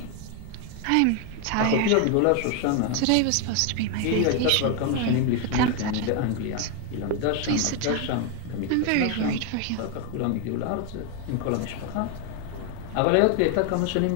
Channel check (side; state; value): both; different; correlation 0.01